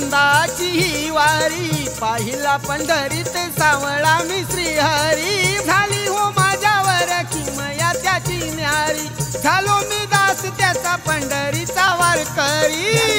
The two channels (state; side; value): identical; both; correlation 1.00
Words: ही वारी, पाहिला पंढरीत सावळा मी श्रीहरी, झाली हो माझ्यावर किमया त्याची न्यारी, झालो मी दास त्याचा पंढरीचा वारकरी.